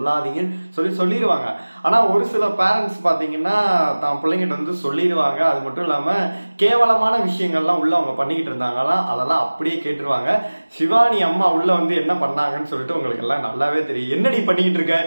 சொல்லிடுவாங்க. ஆனா ஒரு சில பேரண்ட்ஸ் பாத்தீங்கன்னா தான் பிள்ளைங்கிட்ட வந்து சொல்லிடுவாங்க. அது மட்டும் இல்லாம கேவலமான விஷயங்கள்லாம் உள்ள அவங்க பண்ணிக்கிட்டு இருந்தாங்கன்னா அதெல்லாம் அப்படியே கேட்டுருவாங்க. சிவானி அம்மா உள்ள வந்து என்ன பண்ணாங்கன்னு சொல்லிட்டு உங்களுக்கு எல்லாம் நல்லாவே தெரியும். என்னடி பண்ணிக்கிட்டு இருக்க,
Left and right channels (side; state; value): both; inverted; correlation -1.00